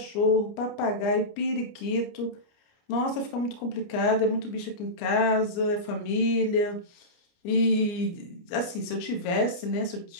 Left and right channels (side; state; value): right; late; 29 ms